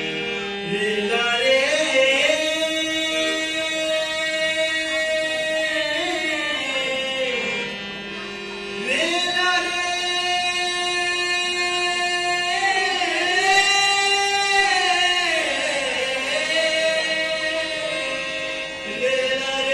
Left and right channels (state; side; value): identical; both; correlation 1.00